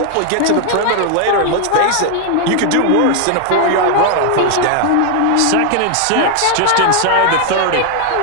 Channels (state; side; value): different; both; correlation 0.00